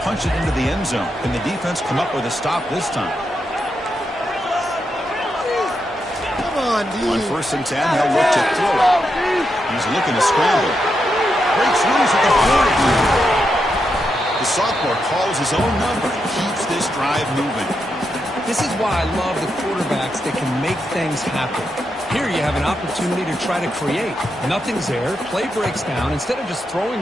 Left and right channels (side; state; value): both; normal; correlation 0.84